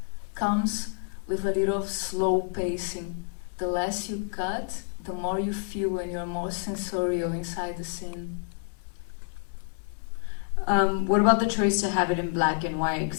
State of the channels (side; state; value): right; silent; 59 dB below the other